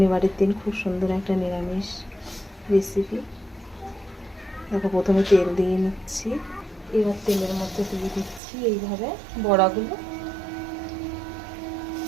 দিন খুব সুন্দর একটা নিরামিষ রেসিপি। দেখো, প্রথমে তেল দিয়ে নিচ্ছি, এবার তেলের মধ্যে দিয়ে দিচ্ছি এইভাবে বড়াগুলো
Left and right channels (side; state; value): left; drops out; at 8.4 s